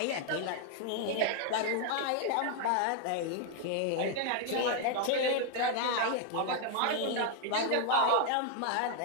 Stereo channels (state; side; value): different; both; correlation 0.00